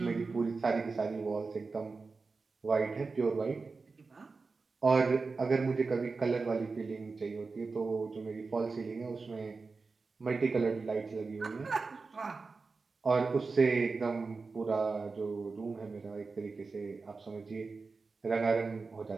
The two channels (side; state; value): left; quieter; 4.2 dB